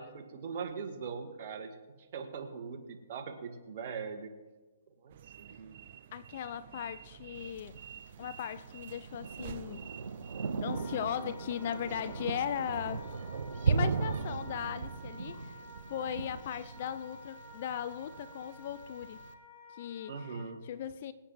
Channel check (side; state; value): both; inverted; correlation -0.62